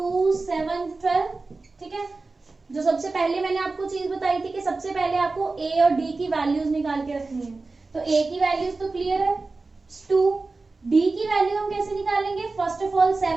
7 12, ठीक है। जो सबसे पहले मैंने आपको चीज बताई थी कि सबसे पहले आपको ए और डी की वैल्यूज निकाल के रखनी है। तो ए की वैल्यूज तो क्लियर है 2, डी की वैल्यू हम कैसे निकालेंगे, फर्स्ट ऑफ ऑल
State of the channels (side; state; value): left; quieter; 3.6 dB